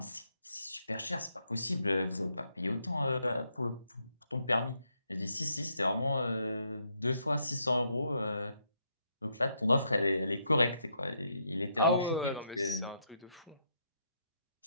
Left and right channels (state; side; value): inverted; both; correlation -0.77